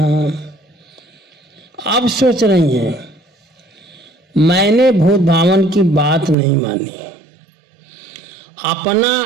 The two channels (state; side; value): drops out; left; at 6.4 s